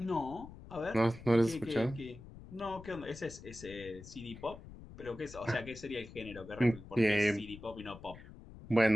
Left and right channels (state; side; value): noise; left; rumble, 16 dB below the sound